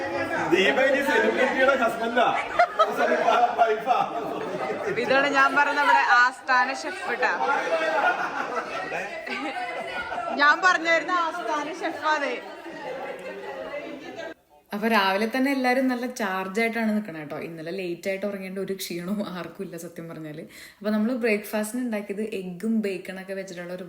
ഇതാണ് ഞാൻ പറഞ്ഞ നമ്മുടെ ആസ്ഥാന ഷെഫ് കേട്ടാ. ഞാൻ പറഞ്ഞായിരുന്നു ആസ്ഥാന ഷെഫാണ്. അപ്പോൾ രാവിലെ തന്നെ എല്ലാവരും നല്ല ചാർജായിട്ടാണ് നിൽക്കണം കേട്ടോ. ഇന്നലെ ലേറ്റായിട്ട് ഉറങ്ങേണ്ട ഒരു ക്ഷീണവും ആർക്കും ഇല്ല സത്യം പറഞ്ഞാൽ. അപ്പോൾ നമ്മൾ ബ്രേക്ക്ഫാസ്റ്റിന് ഉണ്ടാക്കിയത് എഗ്ഗും ബേക്കണൊക്കെ വെച്ചിട്ടുള്ള ഒരു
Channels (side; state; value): both; identical; correlation 1.00